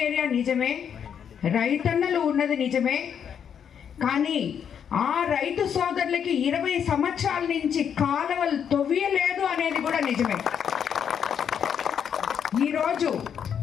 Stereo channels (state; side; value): quieter; right; 8.1 dB